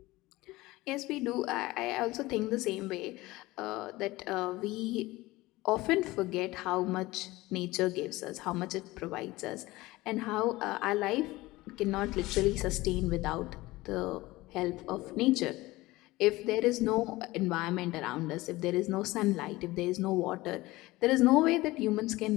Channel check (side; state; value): right; quieter; 19.5 dB